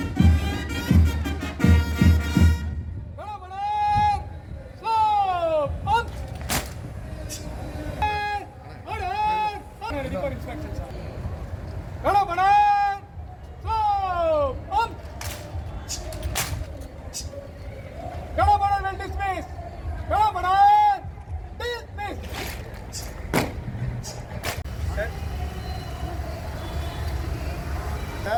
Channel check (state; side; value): identical; both; correlation 1.00